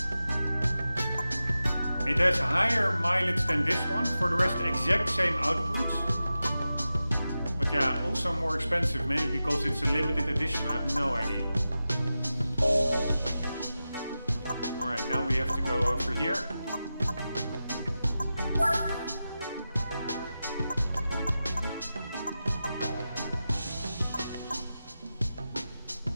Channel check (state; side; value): inverted; both; correlation -0.93